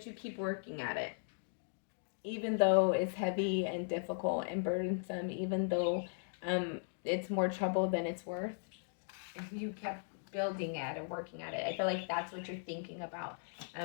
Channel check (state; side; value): silent; right; digital silence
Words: you keep working at it. Even though it's heavy and difficult and burdensome, even though it's more trouble than it's worth, you kept building at it, working at it. I feel like that's what you're thinking about.